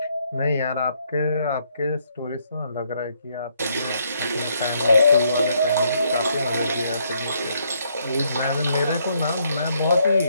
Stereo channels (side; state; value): both; inverted; correlation -0.72